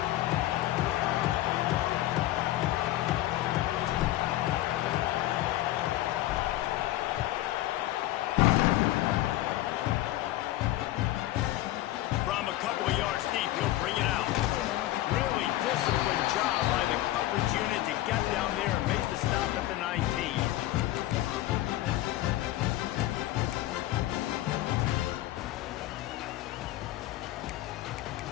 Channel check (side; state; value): right; quieter; 15.5 dB